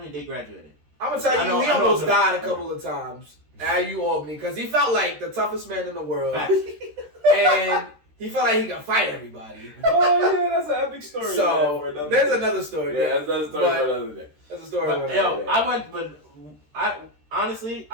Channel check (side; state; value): left; late; 13 ms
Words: they graduated. I'm gonna tell you, he almost died a couple of times at U Albany because he felt like the toughest man in the world, and he felt like he could fight everybody. Oh yeah, that's an epic story. So there's another story. Yeah, that's another story for another day. That's a story.